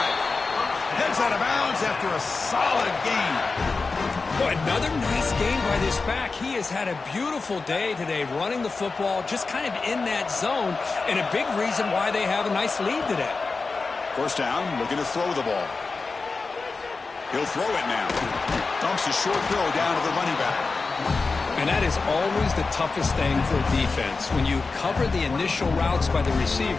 Heads out of bounds after a solid gain. Boy, another nice game by this back. He has had a beautiful day today running the football, just kind of in that zone, and a big reason why they have a nice lead today. 1st down, looking to throw the ball. He'll throw it now. Dumps a short throw down to the running back. And that is always the toughest thing for a defense, when you cover the initial routes by the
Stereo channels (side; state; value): right; quieter; 4.1 dB